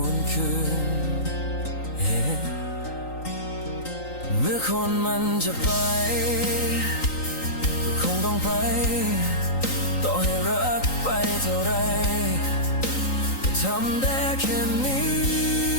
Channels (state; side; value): late; right; 3.9 ms